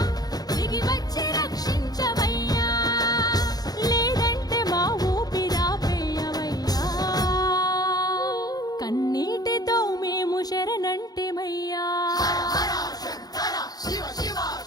దిగి వచ్చి రక్షించవయ్యా లేదంటే మా ఊపిరాపేయవయ్యా కన్నీటితో మేము శరణంటిమయ్యా శివ శివ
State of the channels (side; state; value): right; late; 0.19 ms